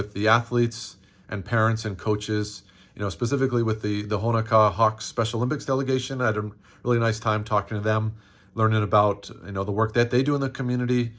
the athletes and parents and coaches, specifically with the Honaka Hawks Special Olympics delegation. I had a really nice time talking to them, learning about the work that they do in the community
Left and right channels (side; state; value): both; identical; correlation 1.00